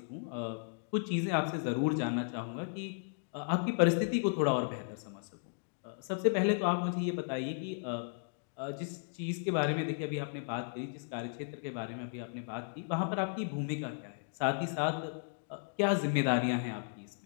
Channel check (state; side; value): silent; right; digital silence